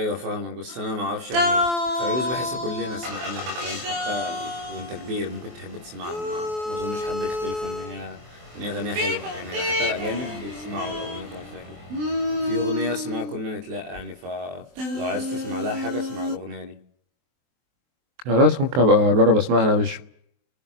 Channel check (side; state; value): left; late; 23 ms